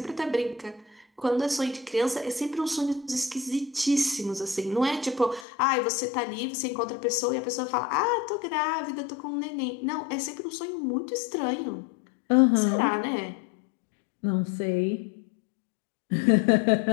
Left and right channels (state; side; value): drops out; right; at 5.5 s